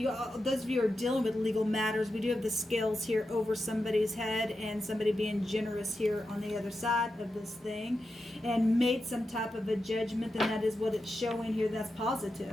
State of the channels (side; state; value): both; normal; correlation 0.89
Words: of you are dealing with legal matters, we do have the scales here over somebody's head and somebody being generous here on the other side of this thing and made some type of a judgment, and that is what it's showing here. That's